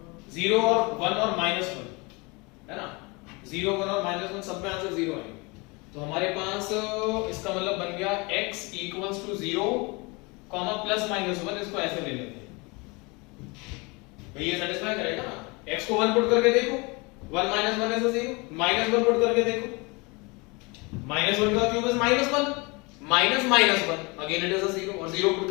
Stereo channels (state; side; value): quieter; right; 27.4 dB